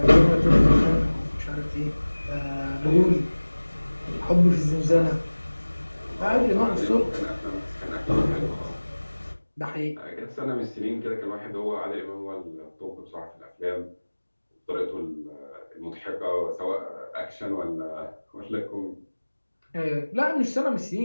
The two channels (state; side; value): inverted; both; correlation -1.00